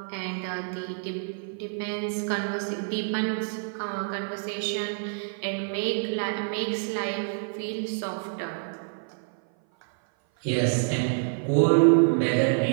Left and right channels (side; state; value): left; silent; 56 dB below the other